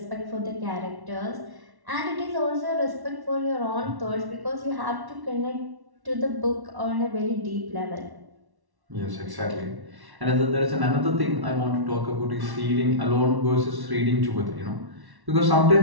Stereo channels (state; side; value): late; left; 1.1 ms